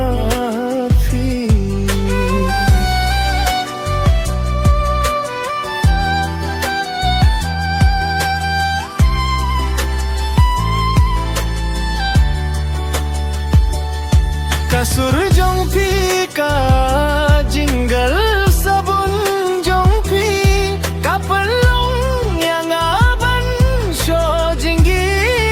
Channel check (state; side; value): identical; both; correlation 1.00